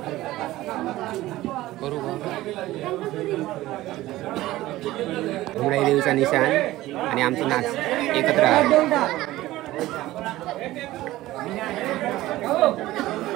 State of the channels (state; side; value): quieter; left; 16.6 dB